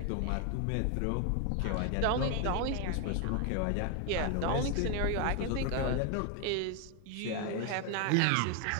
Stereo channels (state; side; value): different; both; correlation 0.01